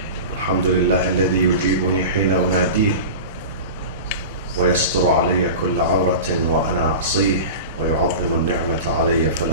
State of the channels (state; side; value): inverted; both; correlation -0.31